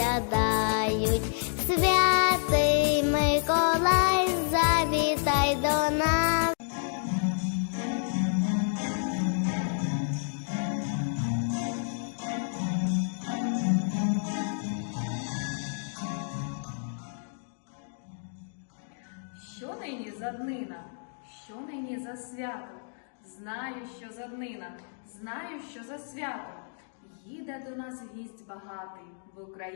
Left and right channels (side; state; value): right; silent; digital silence